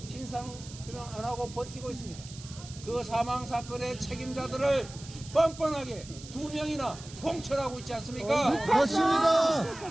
진상규명 안 하고 버티고 있습니다. 그 사망 사건의 책임자들을 뻔뻔하게 2명이나 공천하고 있지 않습니까?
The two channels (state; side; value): noise; right; hiss, 16 dB below the sound